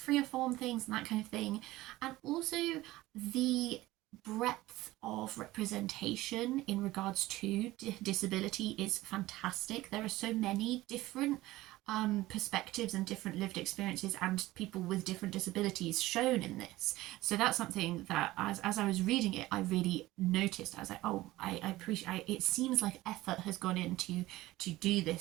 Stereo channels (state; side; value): quieter; left; 17.6 dB